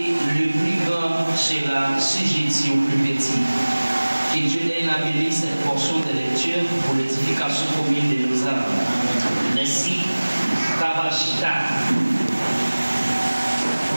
le plus grand sera sujetti au plus petit. Que Dieu ait béni cette portion de lecture pour l'édification commune de nos âmes. Merci. Kabashita.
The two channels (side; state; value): both; inverted; correlation -1.00